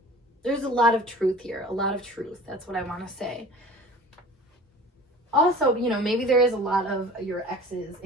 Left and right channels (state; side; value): normal; both; correlation 0.43